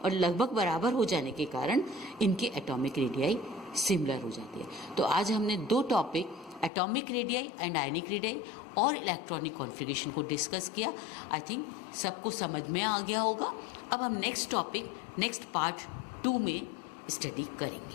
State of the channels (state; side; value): drops out; right; at 6.7 s